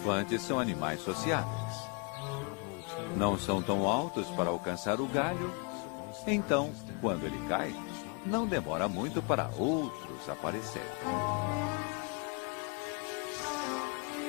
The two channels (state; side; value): quieter; right; 33.4 dB